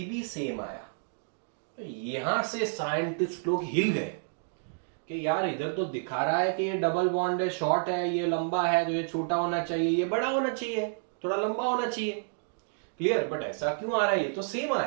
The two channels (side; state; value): left; silent; digital silence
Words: भी सेम आया। तो यहां से साइंटिस्ट लोग हिल गए कि यार इधर तो दिखा रहा है कि ये डबल बॉन्ड है, शॉर्ट है, ये लंबा है, तो ये छोटा होना चाहिए, ये बड़ा होना चाहिए, थोड़ा लंबा होना चाहिए। क्लियर? बट ऐसा क्यों आ रहा है? ये तो सेम